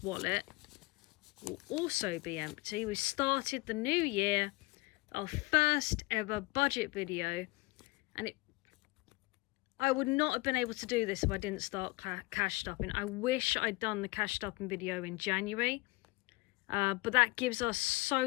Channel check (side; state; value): right; quieter; 23.1 dB